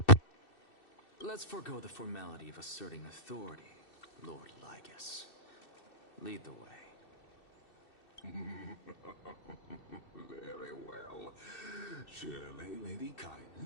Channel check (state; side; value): late; right; 2.6 ms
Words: Let's forego the formality of asserting authority, Lord Lygus. Lead the way. Very well. Surely Lady